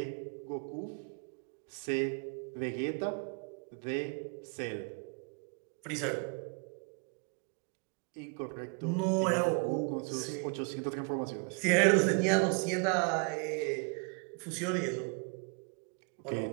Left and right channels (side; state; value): left; quieter; 35.9 dB